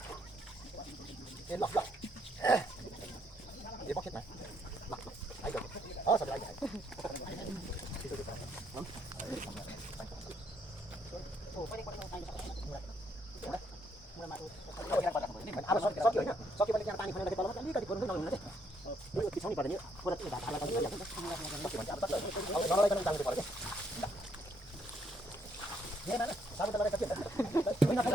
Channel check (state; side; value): normal; both; correlation 0.72